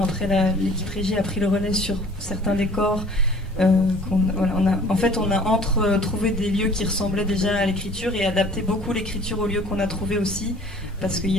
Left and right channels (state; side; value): normal; both; correlation 0.50